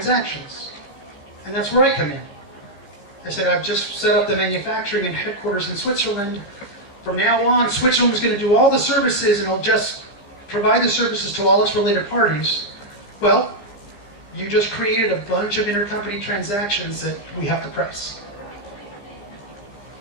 And that's where I come in. I said, I've just set up the manufacturing and headquarters in Switzerland. From now on, Switzerland's going to do all the services and it'll just provide the services to all its related parties. Well, you just created a bunch of intercompany transactions that we have to price.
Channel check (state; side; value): late; right; 15 ms